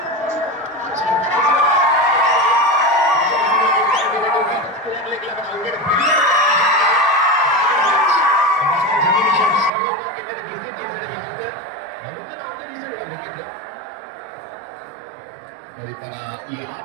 మరి తన ఈ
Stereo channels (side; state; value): left; drops out; at 9.7 s